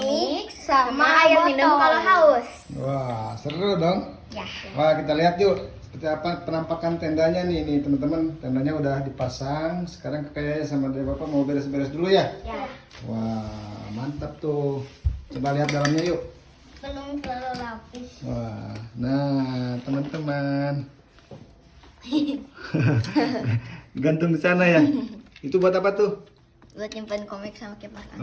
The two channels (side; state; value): both; identical; correlation 1.00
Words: sama air minum kalau haus. Wah, seru dong. Ya. Wah, kita lihat yuk seperti apa penampakan tendanya nih teman-teman. Tendanya udah dipasang. Sekarang kayaknya sama dari Bapak mau beres-beres dulu ya. Ya. Wah, mantap tuh. Coba lihat dalamnya yuk. Belum terlalu lapis. Wah, nah teman-teman. Gantung di sana ya. Itu buat apa tuh? Buat nyimpan komik sama kipas angin.